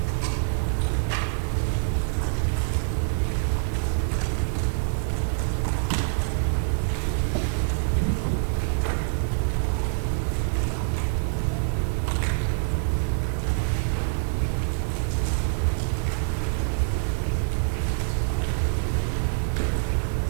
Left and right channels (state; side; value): silent; left; 61 dB below the other